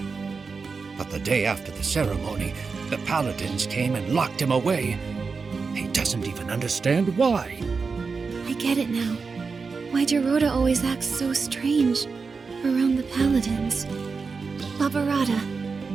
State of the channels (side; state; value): left; quieter; 4.8 dB